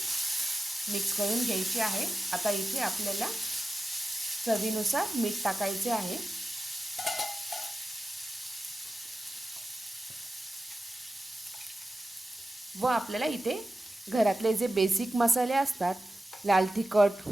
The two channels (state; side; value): normal; both; correlation 0.93